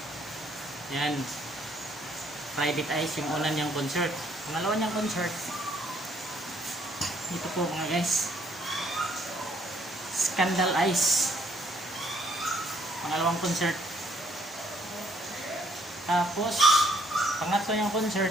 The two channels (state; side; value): normal; both; correlation 0.66